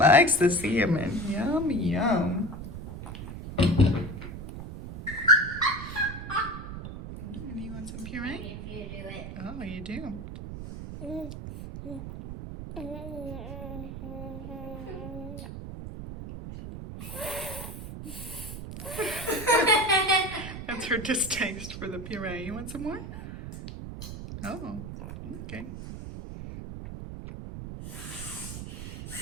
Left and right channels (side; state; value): right; noise; rumble, 9 dB below the sound